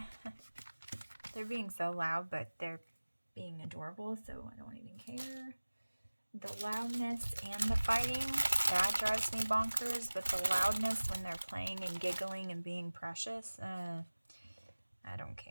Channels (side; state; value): both; inverted; correlation -1.00